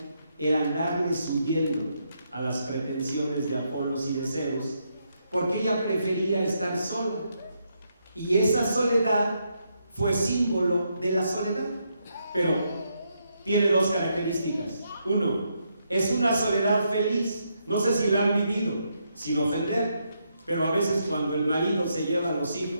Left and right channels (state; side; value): inverted; both; correlation -0.79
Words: era darles huyendo a las pretensiones de Apolos y de Zeus, porque ella prefería estar sola, y esa soledad fue símbolo de la soledad. Pero tiene 2 características. Uno, es una soledad feliz. No sé si la han vivido, sin ofender, pero a veces cuando el marido se lleva a los